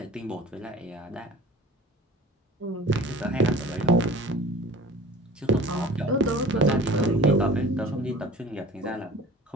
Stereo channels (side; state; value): both; normal; correlation 0.41